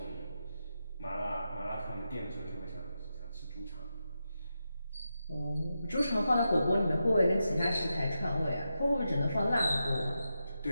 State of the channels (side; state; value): both; inverted; correlation -0.88